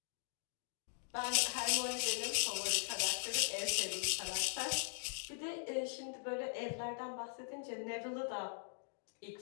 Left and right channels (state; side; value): silent; right; digital silence